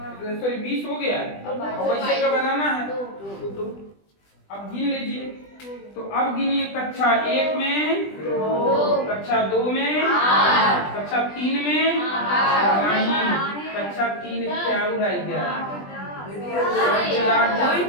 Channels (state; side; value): late; right; 20 ms